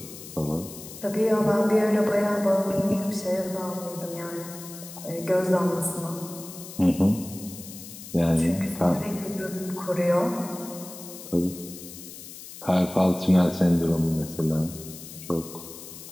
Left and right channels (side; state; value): left; noise; hiss, 14 dB below the sound